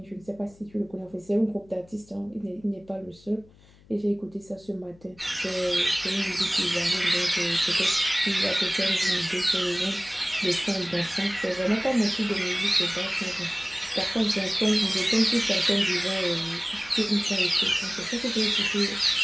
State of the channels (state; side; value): noise; left; hum, 26 dB below the sound